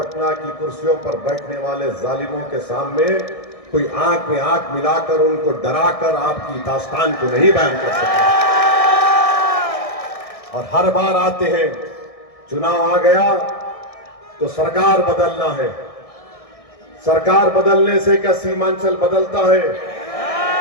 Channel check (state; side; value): late; right; 1.6 ms